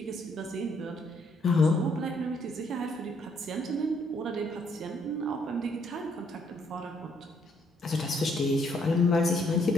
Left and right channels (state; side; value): normal; both; correlation 0.70